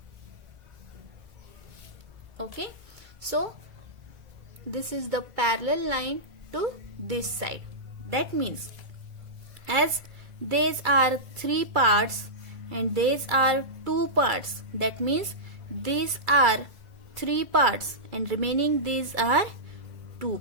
Okay, so this is the parallel line to this side. That means as these are 3 parts and these are 2 parts, that means these are 3 parts and remaining these are 2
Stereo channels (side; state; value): left; late; 2.3 ms